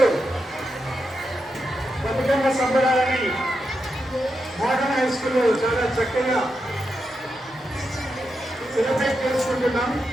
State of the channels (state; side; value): normal; both; correlation 0.86